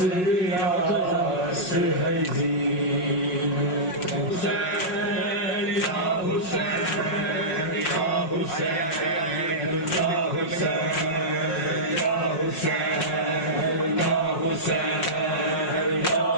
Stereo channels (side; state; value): right; late; 5.5 ms